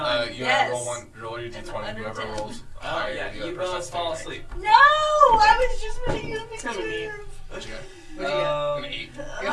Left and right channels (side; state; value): both; identical; correlation 1.00